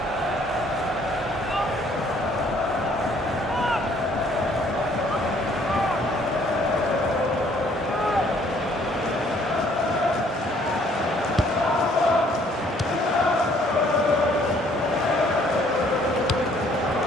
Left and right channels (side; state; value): both; normal; correlation 0.62